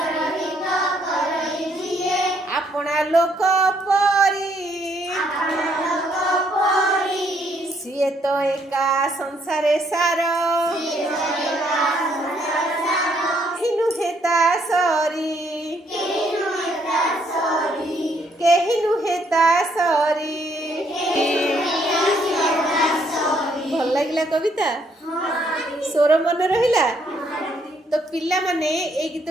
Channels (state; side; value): normal; both; correlation 0.70